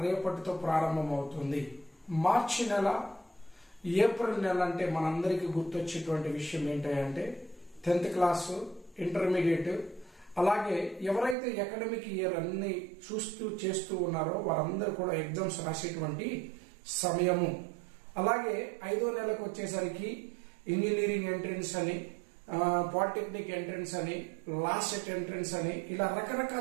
రేపటితో ప్రారంభం అవుతుంది. మార్చి నెల, ఏప్రిల్ నెల అంటే మనందరికీ గుర్తొచ్చేటువంటి విషయం ఏంటంటే 10th క్లాసు, ఇంటర్మీడియట్, అలాగే ఎవరైతే అకాడమిక్ ఇయర్ అన్ని చేస్తూ ఉన్నారో వారందరూ కూడా ఎగ్జామ్స్ రాసేటువంటి సమయము. అలాగే 5వ నెలకు వచ్చేసరికి ఇంజనీరింగ్ ఎంట్రన్స్ అని, పాలిటెక్నిక్ ఎంట్రన్స్ అని, లాస్ట్ ఎంట్రన్స్ అని, ఇలా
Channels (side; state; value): left; drops out; at 11.4 s